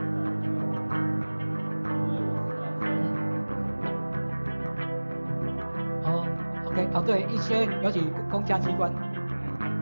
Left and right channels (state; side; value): inverted; both; correlation -1.00